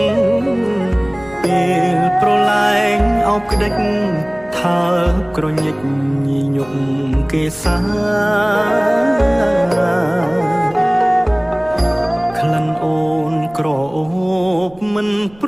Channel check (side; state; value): right; noise; rumble, 25 dB below the sound